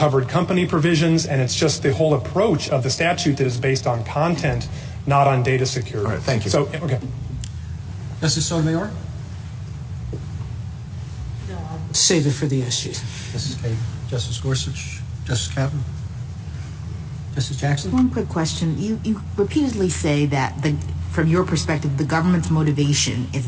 company provisions, and it's just the whole approach of the statute that is based on content, not on data security. All right, thank you. So, okay. Justice Sotomayor? Save it for the SG. Justice Kagan? Justice Gorsuch? Justice Kaplan? Justice Jackson? One quick question. You repeatedly say that from your perspective, the government's motivation is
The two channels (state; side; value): identical; both; correlation 1.00